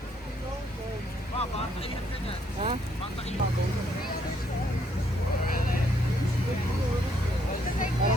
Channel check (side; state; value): both; normal; correlation 0.70